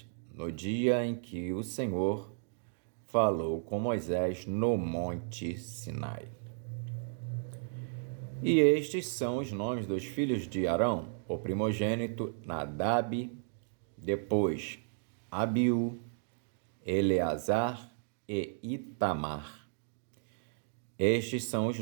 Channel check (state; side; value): silent; left; digital silence